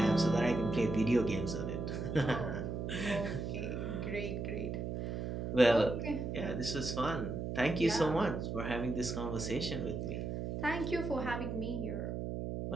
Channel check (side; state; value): right; noise; hum, 3 dB below the sound